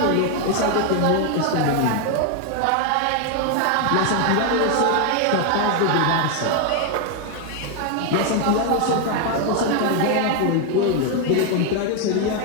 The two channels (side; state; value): both; different; correlation 0.01